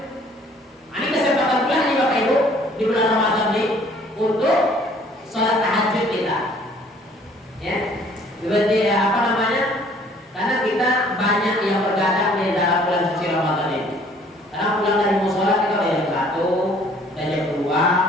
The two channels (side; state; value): both; normal; correlation 0.57